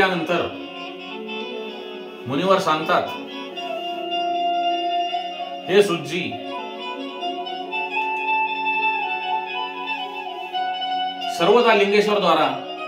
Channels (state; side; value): identical; both; correlation 1.00